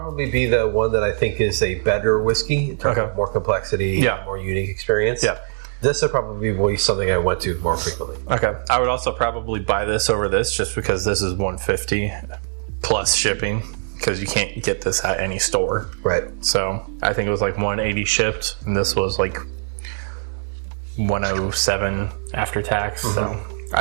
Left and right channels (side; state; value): left; silent; 60 dB below the other